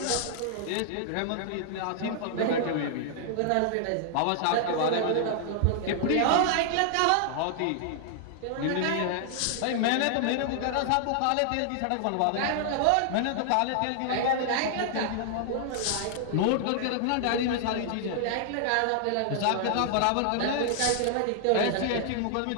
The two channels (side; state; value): both; different; correlation -0.01